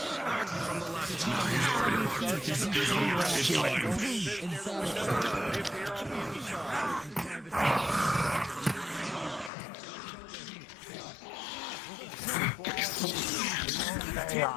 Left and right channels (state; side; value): drops out; right; at 9.5 s